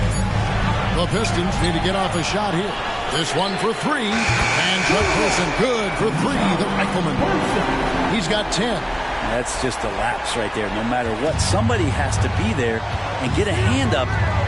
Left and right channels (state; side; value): identical; both; correlation 1.00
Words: The Pistons need to get off a shot here. This one for 3. And Chuck Person good for 3. The rifleman. He's got 10. That's just a lapse right there. No matter what, somebody has to be there and get a hand up